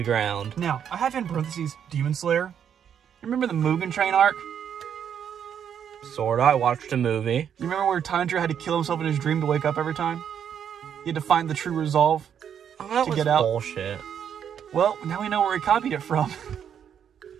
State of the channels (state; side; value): quieter; left; 8.5 dB